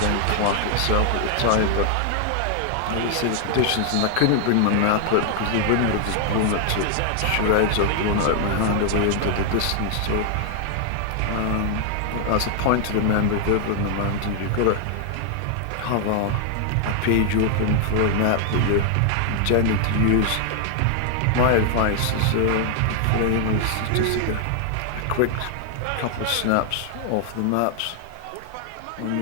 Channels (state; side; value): different; both; correlation 0.00